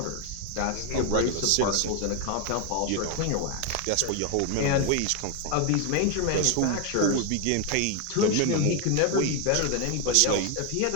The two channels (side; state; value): both; different; correlation 0.01